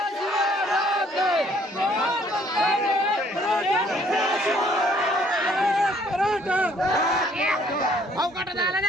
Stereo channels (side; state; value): both; normal; correlation 0.62